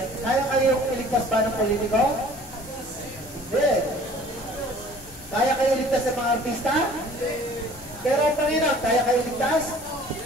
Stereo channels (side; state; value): left; noise; rumble, 21 dB below the sound